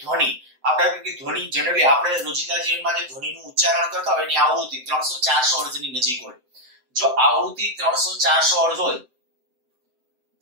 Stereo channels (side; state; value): left; late; 7.8 ms